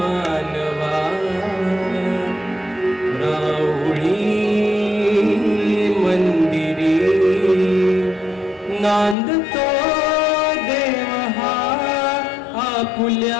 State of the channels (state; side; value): drops out; right; at 9.2 s